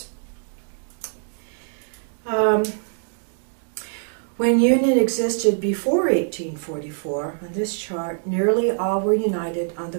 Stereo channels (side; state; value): left; silent; digital silence